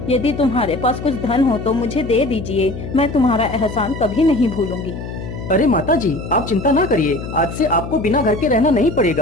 यदि तुम्हारे पास कुछ धन हो तो मुझे दे दीजिए। मैं तुम्हारा एहसान कभी नहीं भूलूंगी। अरे माता जी, आप चिंता ना करिए, आज से आपको बिना घर के रहना नहीं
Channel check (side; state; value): left; noise; hum, 9 dB below the sound